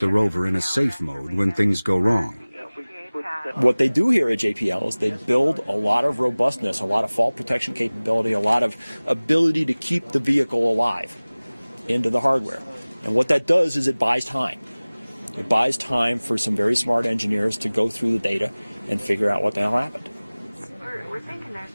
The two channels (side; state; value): both; inverted; correlation -1.00